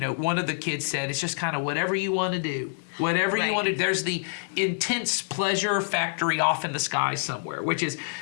one of the kids said, it's just kind of whatever you want to do. Whatever you Right. want to do. There's the intense pleasure factory off in the sky somewhere, which is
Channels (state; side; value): silent; right; digital silence